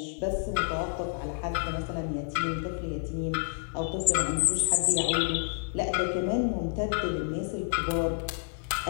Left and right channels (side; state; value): right; silent; digital silence